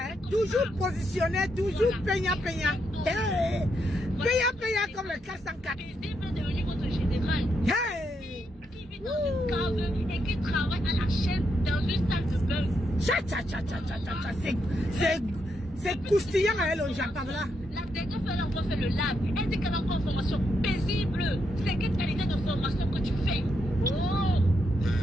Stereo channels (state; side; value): normal; both; correlation 0.80